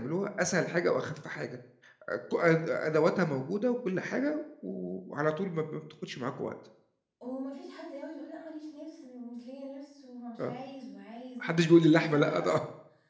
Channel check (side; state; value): both; identical; correlation 1.00